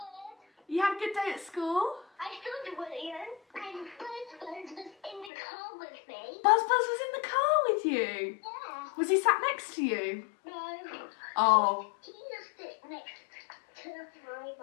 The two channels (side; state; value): right; drops out; at 5.3 s